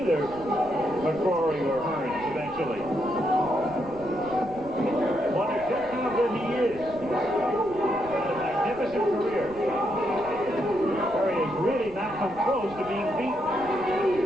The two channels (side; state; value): right; noise; rumble, 19 dB below the sound